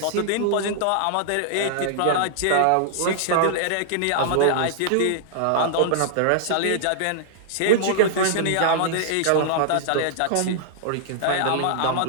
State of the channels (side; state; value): both; different; correlation -0.01